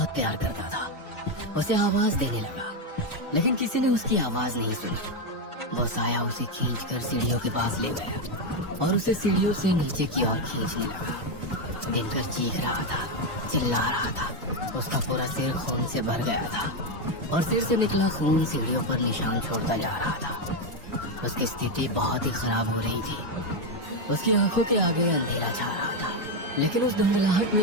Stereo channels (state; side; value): normal; both; correlation 0.06